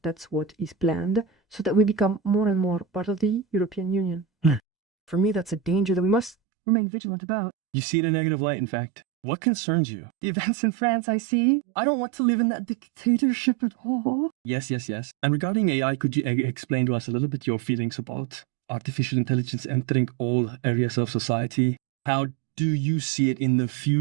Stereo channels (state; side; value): drops out; left; at 6.4 s